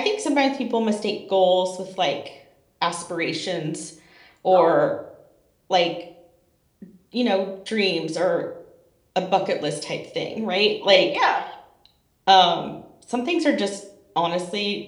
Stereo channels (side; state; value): both; identical; correlation 1.00